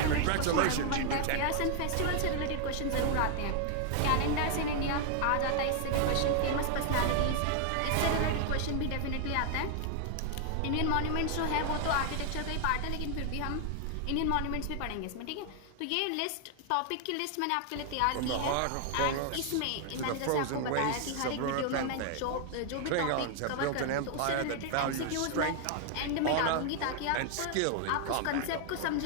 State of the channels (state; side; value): different; both; correlation 0.00